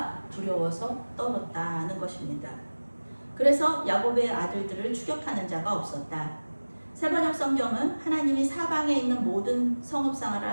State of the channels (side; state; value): both; inverted; correlation -1.00